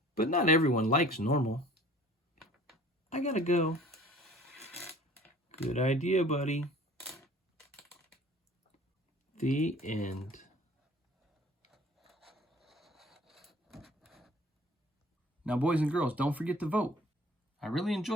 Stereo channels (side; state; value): both; normal; correlation 0.50